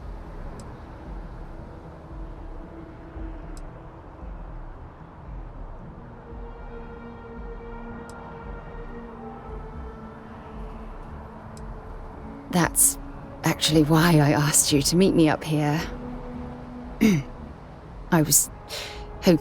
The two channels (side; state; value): both; identical; correlation 1.00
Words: That's actually why I asked you to meet me up here. I was